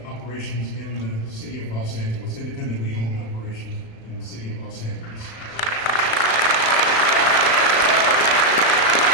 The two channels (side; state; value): right; late; 35 ms